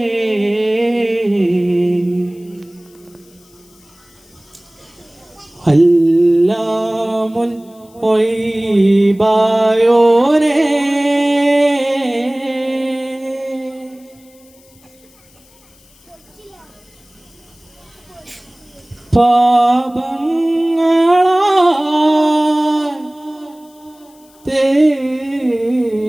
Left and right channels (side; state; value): left; noise; hiss, 29 dB below the sound